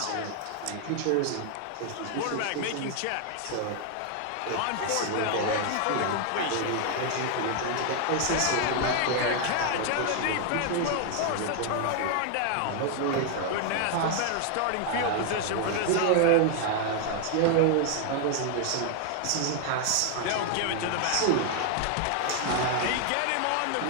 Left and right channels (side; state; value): both; different; correlation 0.00